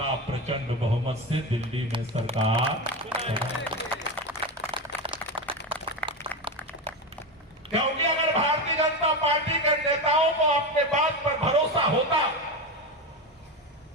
प्रचंड बहुमत से दिल्ली में सरकार, क्योंकि अगर भारतीय जनता पार्टी के नेताओं को अपने बात पर भरोसा होता,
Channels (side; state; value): both; normal; correlation 0.18